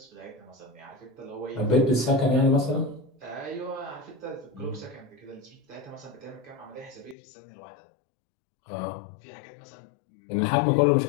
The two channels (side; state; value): right; drops out; at 7.2 s